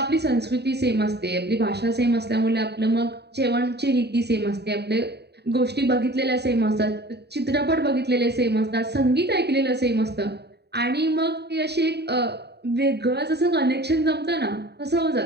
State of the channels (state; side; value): late; left; 0.48 ms